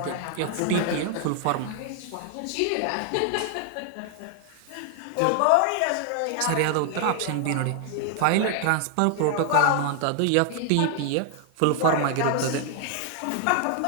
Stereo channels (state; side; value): different; both; correlation 0.00